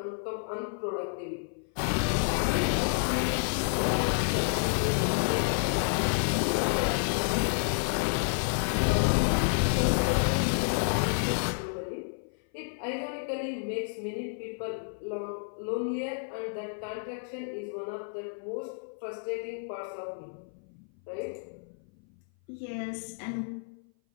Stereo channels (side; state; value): right; silent; 56 dB below the other